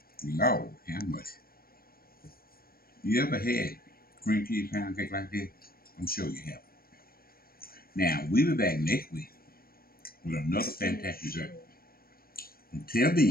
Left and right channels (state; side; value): late; right; 0.43 ms